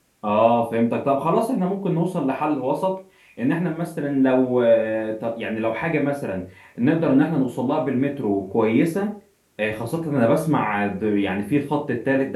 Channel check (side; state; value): both; identical; correlation 1.00